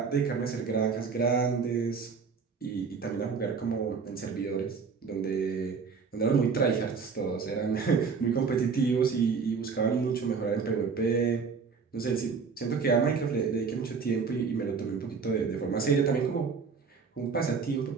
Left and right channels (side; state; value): left; quieter; 5.4 dB